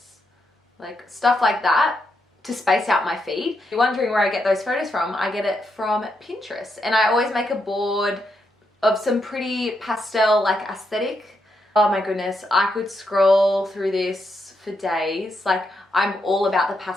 like stuff like that to space out my feed. If you're wondering where I get those photos from, I get it from Pinterest. And I always make a board of some pretty pastel like aesthetic. Oh my goodness, I could scroll through this for days. Like I'm all about the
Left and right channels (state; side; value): normal; both; correlation 0.81